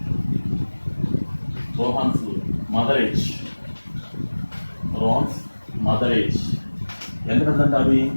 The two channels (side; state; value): both; inverted; correlation -1.00